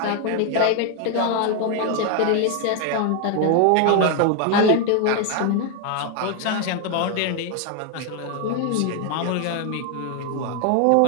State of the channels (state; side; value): different; both; correlation 0.01